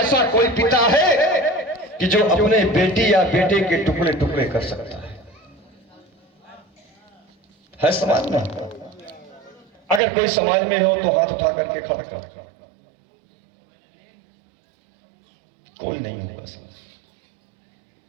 कोई पिता है कि जो अपने बेटी या बेटे के टुकड़े टुकड़े कर सकता है समाज में? अगर कोई समाज में हो तो हाथ उठा करके खड़ा कर। कोई नहीं होगा समाज।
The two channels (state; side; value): drops out; left; at 10.0 s